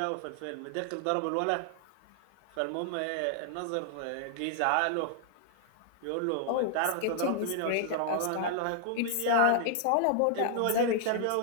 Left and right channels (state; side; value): different; both; correlation 0.00